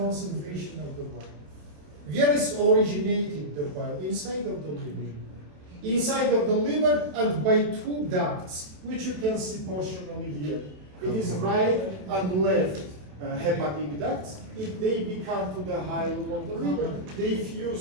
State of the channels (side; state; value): left; late; 27 ms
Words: of the bile. Where is originated the bile? Inside of the liver. Inside of the liver and by two ducts, which you can see portionally here. It is right and left hepatic ducts. If they become to the hilum of the liver, they